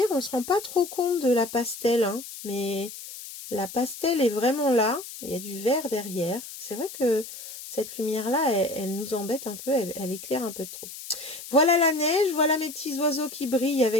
on ne se rend pas trop compte de la pastel, hein, mais la pastel est vraiment là. Il y a du vert derrière. C'est vrai que cette lumière-là, elle nous embête un peu, elle éclaire un peu trop. Voilà la neige, voilà mes petits oiseaux qui brillent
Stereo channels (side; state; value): left; noise; hiss, 12 dB below the sound